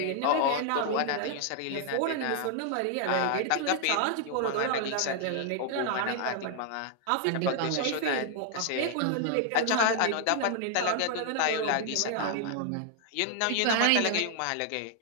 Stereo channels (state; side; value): different; both; correlation 0.00